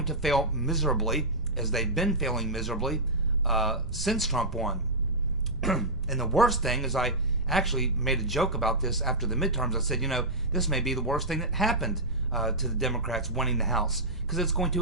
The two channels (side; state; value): right; noise; rumble, 8 dB below the sound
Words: to fail miserably, as they've been failing miserably since Trump won. And the worst thing is, I actually made a joke about this after the midterms. I said, you know, this may be the worst thing that happened to the Democrats winning the House, because it's going